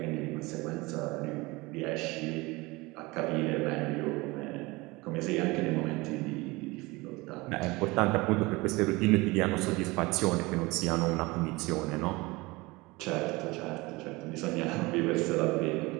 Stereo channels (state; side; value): quieter; left; 23.0 dB